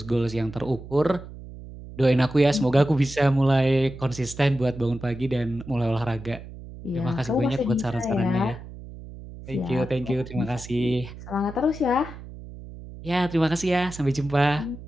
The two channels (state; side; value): noise; right; hum, 14 dB below the sound